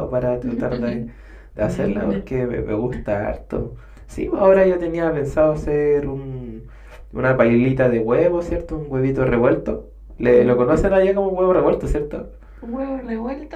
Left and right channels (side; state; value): both; identical; correlation 1.00